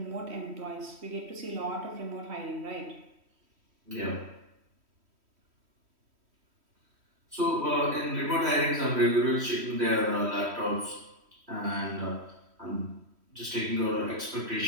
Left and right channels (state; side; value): late; left; 3.1 ms